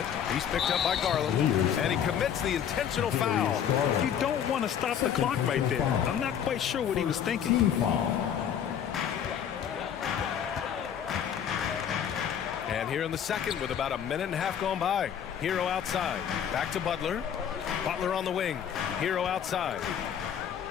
He's picked up by Garland. And he commits the intentional foul. You don't want to stop the clock right there. I'm not quite sure what he was thinking. And here in the second with about a minute and a half gone by. Hero outside. Back to Butler. Butler on the wing. Hero outside.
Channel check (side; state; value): right; quieter; 8.8 dB